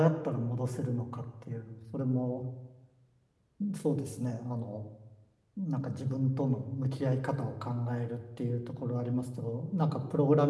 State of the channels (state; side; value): identical; both; correlation 1.00